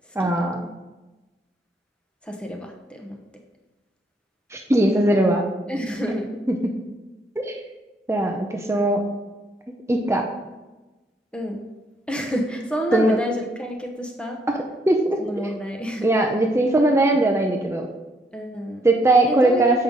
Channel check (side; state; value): both; normal; correlation 0.70